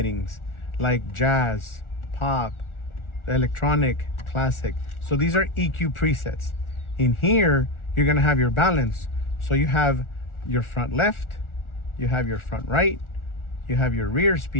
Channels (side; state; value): right; late; 1.4 ms